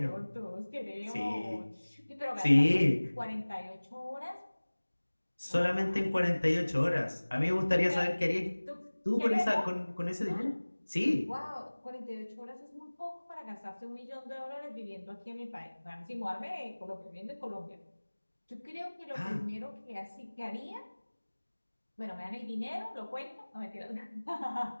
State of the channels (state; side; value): inverted; both; correlation -1.00